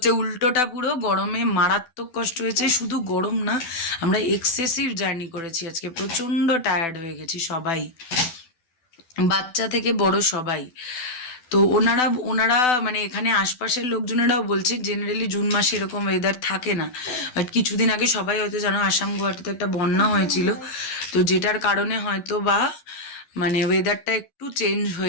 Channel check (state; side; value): late; right; 12 ms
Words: উল্টোটা, পুরো গরমে মারাত্মক কষ্ট হয়েছে। শুধু গরম না, আমরা এক্সেসিভ জার্নি করেছি আজকে, প্রচণ্ড টায়ার্ড হয়ে গেছি সবাই, বাচ্চা থেকে বড় সবাই। তো ওনারা মানে এখানে আশপাশের লোকজনেরাও বলছে জেনারেলি জুন মাসে এরকম ওয়েদার থাকে না। বাট কিছুদিন আগে সবাই হয়তো জানো, আসাম গুয়াহাটিতে একটা বন্যা হয়েছিল, তো যেটার কারণে হয়তো বা মানে ওয়েদারটা একটু চেঞ্জ